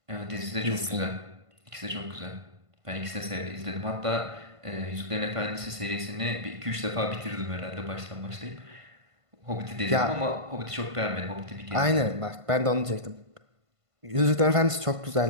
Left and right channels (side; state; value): left; late; 1.5 ms